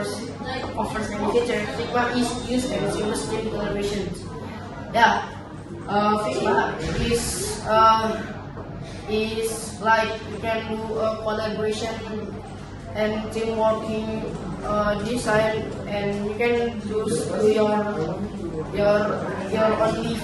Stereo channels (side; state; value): both; identical; correlation 1.00